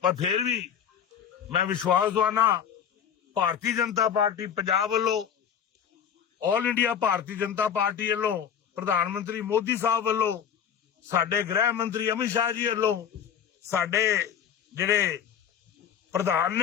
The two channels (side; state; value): right; quieter; 8.4 dB